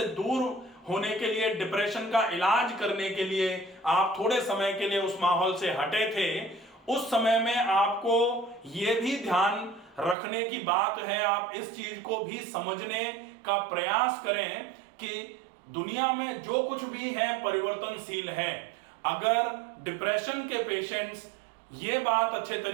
दूर होने के लिए, डिप्रेशन का इलाज करने के लिए आप थोड़े समय के लिए उस माहौल से हटे थे, उस समय में आपको यह भी ध्यान रखने की बात है, आप इस चीज को भी समझने का प्रयास करें कि दुनिया में जो कुछ भी है परिवर्तनशील है। अगर डिप्रेशन के पेशेंट्स ये बात अच्छे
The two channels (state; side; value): drops out; left; at 10.2 s